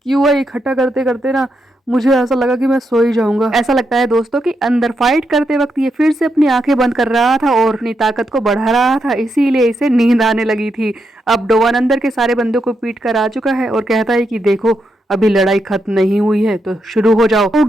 क्यूआ इकट्ठा करते करते ना मुझे ऐसा लगा कि मैं सो ही जाऊंगा। ऐसा लगता है दोस्तों कि अंदर फाइट करते वक्त ये फिर से अपनी आंखें बंद कर रहा था और अपनी ताकत को बढ़ा रहा था, इसीलिए इसे नींद आने लगी थी। अब डोवान अंदर के सारे बंदों को पीट कर आ चुका है और कहता है कि देखो अभी लड़ाई खत्म नहीं हुई है तो शुरू हो जाओ। तो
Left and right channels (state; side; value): normal; both; correlation 0.82